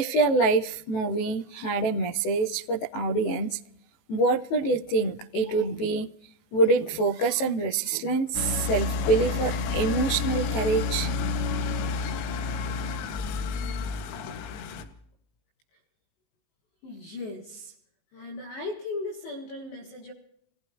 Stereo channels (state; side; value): late; right; 18 ms